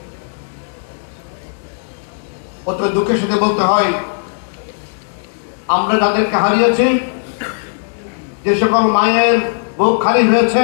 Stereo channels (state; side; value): silent; right; digital silence